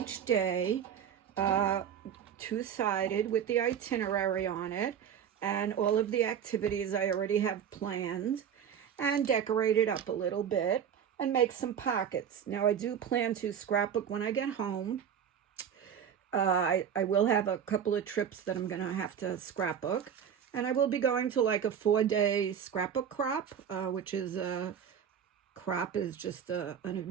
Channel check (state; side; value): quieter; left; 8.4 dB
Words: day, two-sided with the itinerary on it, and all of the activities I already have planned, and decorate it up a little bit and make some pockets. Now I do plan to scrapbook when I get home. I will have a couple of trips that I'm going to have to scrapbook. And I will be going to like a 4-day scrapbook crop, which is crop is just an